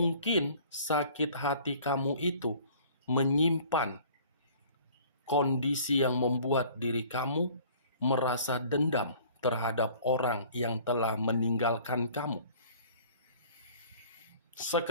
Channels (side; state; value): both; inverted; correlation -0.51